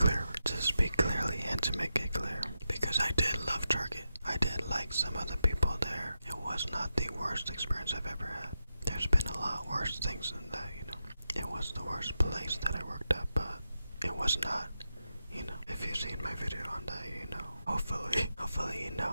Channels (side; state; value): both; inverted; correlation -0.88